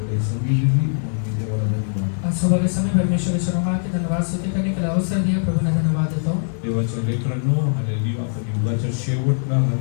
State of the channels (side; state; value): right; silent; 55 dB below the other